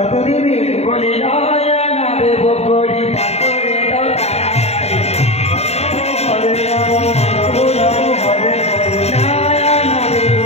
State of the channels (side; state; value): right; late; 0.31 ms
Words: দেবে? বলি নয়া না দেব করি পাথরে দাও তাড়াতাড়ি। হরে রাম হরে নয়া না দেব